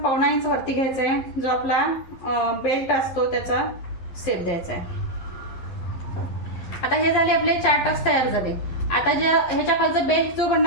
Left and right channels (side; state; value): right; late; 11 ms